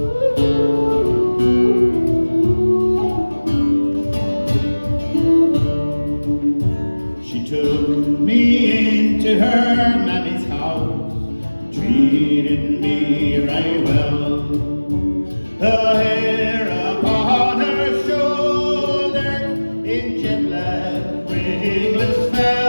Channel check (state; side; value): inverted; both; correlation -1.00